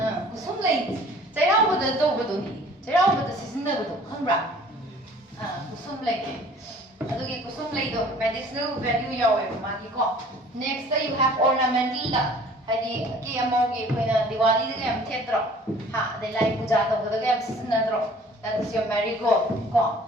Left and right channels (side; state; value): both; normal; correlation 0.51